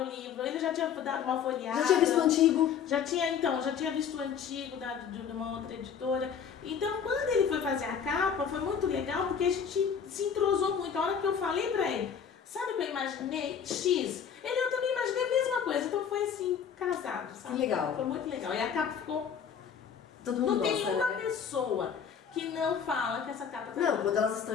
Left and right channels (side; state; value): right; quieter; 7.4 dB